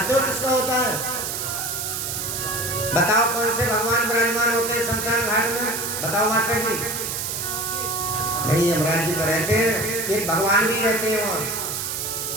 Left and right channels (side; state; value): right; noise; hiss, 3 dB below the sound